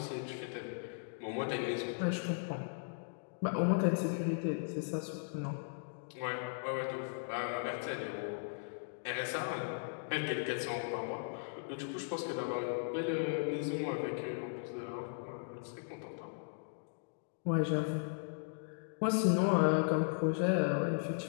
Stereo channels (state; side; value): silent; right; digital silence